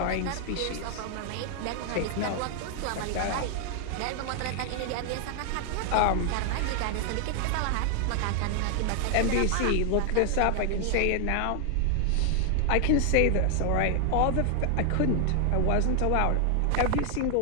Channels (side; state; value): both; different; correlation 0.00